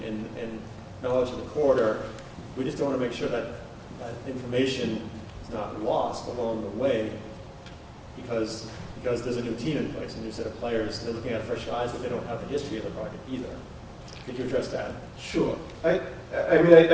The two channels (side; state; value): both; identical; correlation 1.00